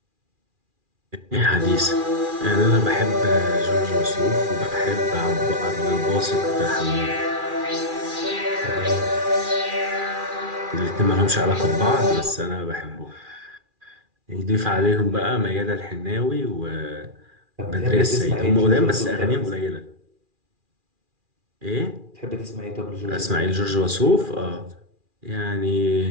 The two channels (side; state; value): left; late; 2.4 ms